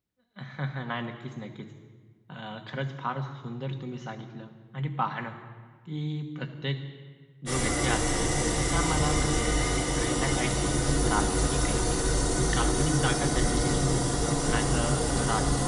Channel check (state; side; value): identical; both; correlation 1.00